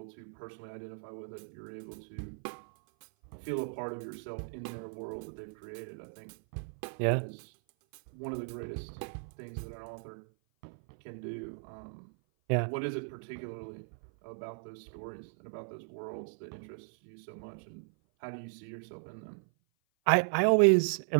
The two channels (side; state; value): left; silent; 54 dB below the other